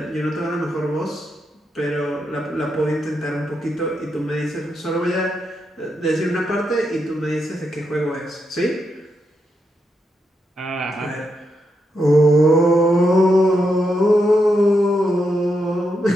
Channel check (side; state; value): both; normal; correlation 0.83